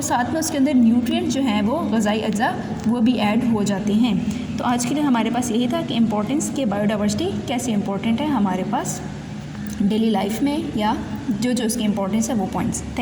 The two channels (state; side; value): identical; both; correlation 1.00